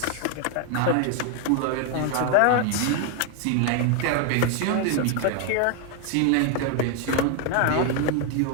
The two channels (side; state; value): both; different; correlation 0.00